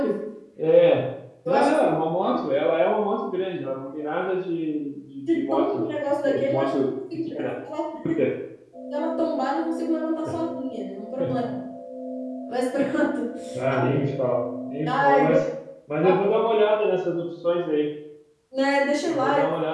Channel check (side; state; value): both; identical; correlation 1.00